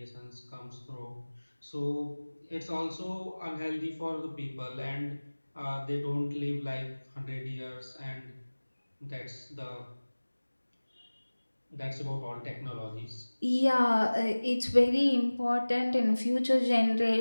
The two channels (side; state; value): both; inverted; correlation -1.00